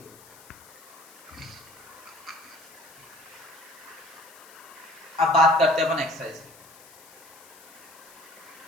अब बात करते हैं अपन एक्सरसाइज की।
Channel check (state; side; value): noise; left; hiss, 21 dB below the sound